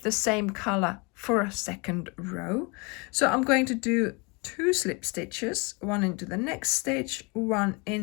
the same color for a second row. So I'm going to do 2 slip stitches, one into the next stitch, one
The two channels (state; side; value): quieter; right; 29.6 dB